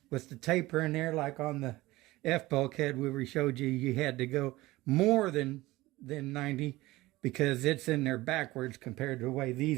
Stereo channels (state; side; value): quieter; left; 18.9 dB